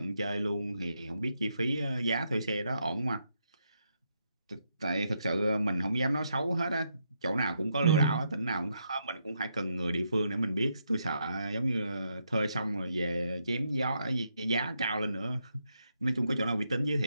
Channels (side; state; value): both; inverted; correlation -0.80